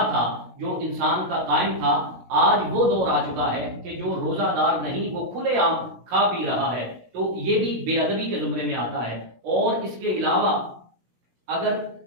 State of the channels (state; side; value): late; left; 16 ms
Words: تھا جو انسان کا قائم تھا. آج وہ دور آ چکا ہے کہ جو روزہ دار نہیں وہ کھلے عام کھا پی رہا ہے. تو یہ بھی بے ادبی کے زمرے میں آتا ہے. اور اس کے علاوہ اگر